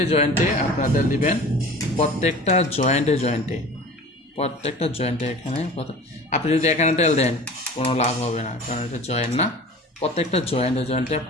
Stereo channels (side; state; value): both; normal; correlation 0.40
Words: জয়েন্টে আপনারা তেল দিবেন, প্রত্যেকটা জয়েন্টে জয়েন্টে এখানে। আপনি যদি এখানে তেল দেন কোনো লাভ হবে না, কারণ এটা জয়েন্ট না। প্রত্যেকটা জয়েন্টে জয়েন্টে